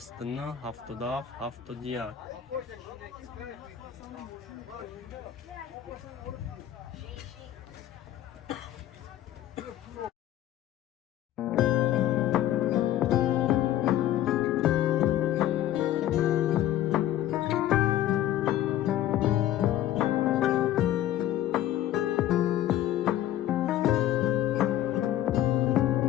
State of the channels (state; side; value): quieter; right; 12.4 dB